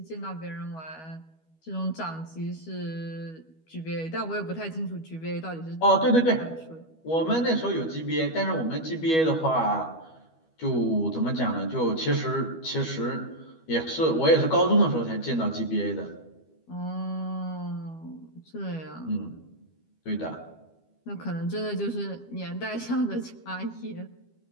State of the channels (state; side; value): late; right; 12 ms